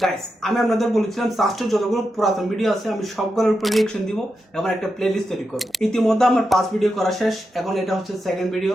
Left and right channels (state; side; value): normal; both; correlation 0.87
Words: Guys, আমি আপনাদের বলেছিলাম সাস্টের যতগুলো পুরাতন ভিডিও আছে আমি সবগুলোর উপর রিঅ্যাকশন দিব এবং একটা প্লেলিস্ট তৈরি করব। ইতিমধ্যে আমার 5 ভিডিও করা শেষ, এখন এটা হচ্ছে সেকেন্ড ভিডিও।